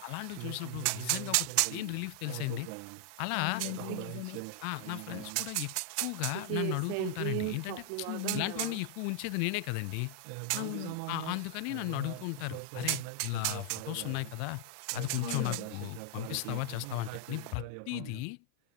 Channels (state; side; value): different; both; correlation 0.00